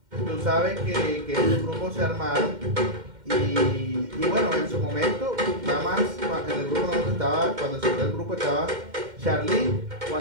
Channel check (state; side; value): late; left; 2.1 ms